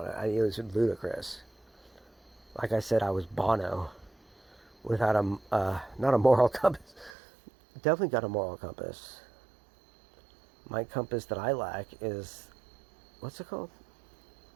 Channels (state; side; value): drops out; left; at 7.1 s